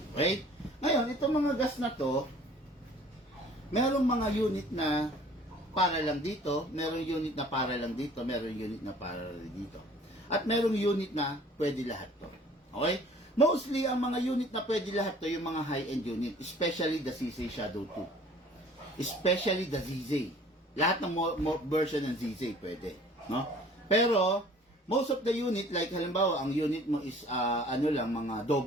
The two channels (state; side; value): normal; both; correlation 0.51